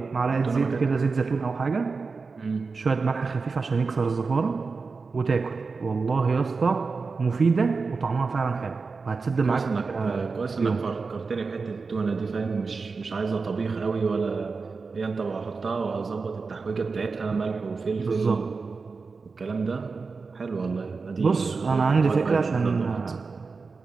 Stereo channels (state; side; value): quieter; left; 4.5 dB